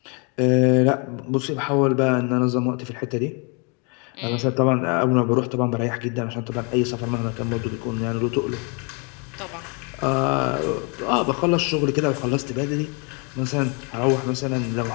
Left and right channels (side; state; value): right; quieter; 34.2 dB